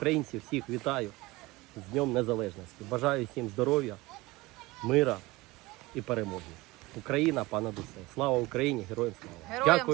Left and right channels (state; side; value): quieter; left; 21.0 dB